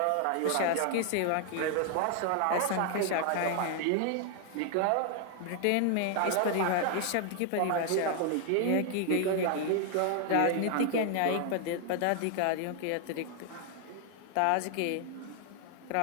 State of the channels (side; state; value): both; different; correlation 0.00